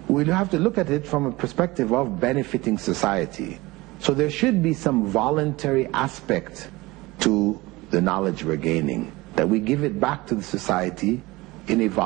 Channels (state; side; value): quieter; left; 21.2 dB